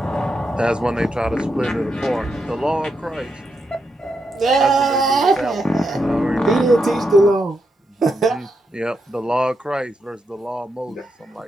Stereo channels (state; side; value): normal; both; correlation 0.83